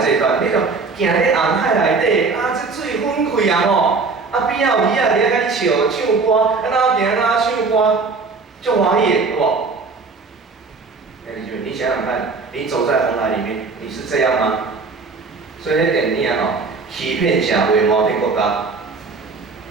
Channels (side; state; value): left; quieter; 4.4 dB